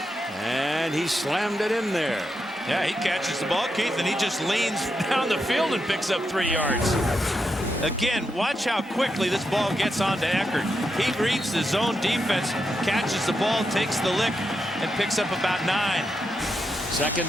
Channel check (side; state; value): both; normal; correlation 0.85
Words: and he slammed it in there. Yeah, he catches the ball, Keith, and he just leans down the field and picks up 3 yards. Again, watch how quickly this ball gets onto Eckert. He reads the zone defense, catches the ball, takes the lick, and picks up about 9.